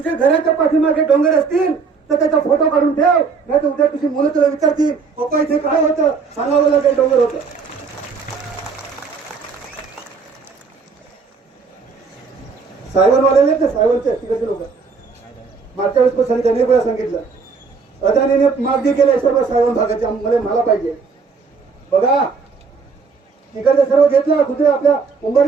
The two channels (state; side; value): quieter; left; 5.1 dB